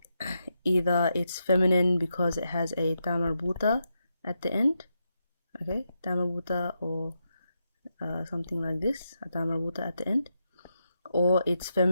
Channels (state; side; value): inverted; both; correlation -0.84